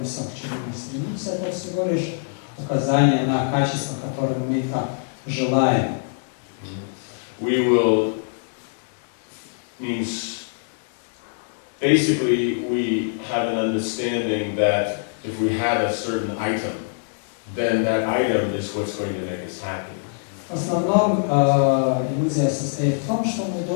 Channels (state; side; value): silent; right; digital silence